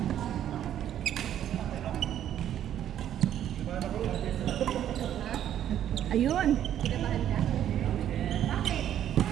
Ayun. Kinabahan ka? Bakit?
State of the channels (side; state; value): left; quieter; 10.8 dB